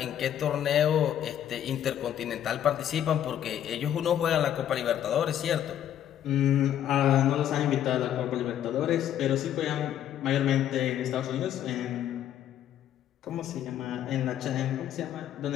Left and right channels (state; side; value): quieter; right; 10.7 dB